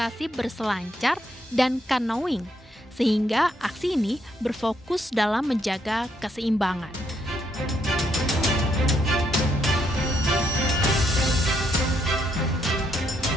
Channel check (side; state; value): both; normal; correlation 0.75